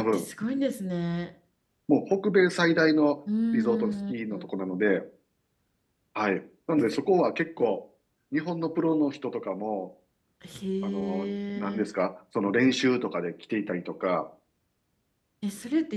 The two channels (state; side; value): identical; both; correlation 1.00